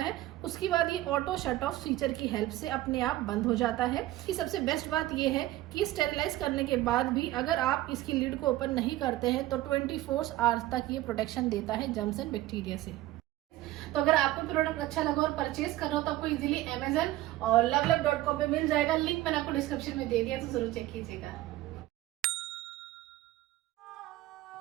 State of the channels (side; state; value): left; quieter; 15.9 dB